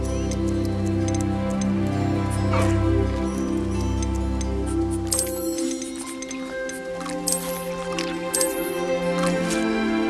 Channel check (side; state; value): both; identical; correlation 1.00